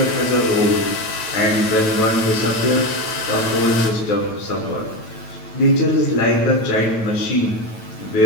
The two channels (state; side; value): late; right; 9.1 ms